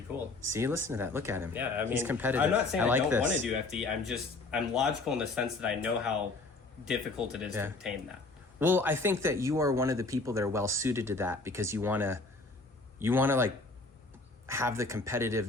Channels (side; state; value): right; quieter; 3.4 dB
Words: be cool. see, listen to that. Look at him. Yeah, I mean, he's competitive. I'm not saying I, like don't this. want to do FD. I'm logical in the sense that I know how difficult it is Yeah. to obtain that. Well, I think that you are one of the people that are well suited to that because you want to like have the